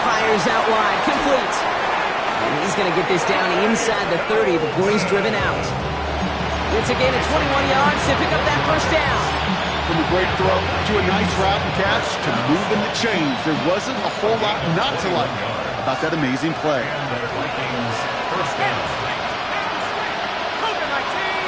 fires out wide, complete. And he's going to get this down inside the 30 before he's driven out. It's a gain of 21 yards to pick up that first down. From a great throw to a nice route and catch to moving the chains. There wasn't a whole lot not to like about that amazing play.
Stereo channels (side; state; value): both; identical; correlation 1.00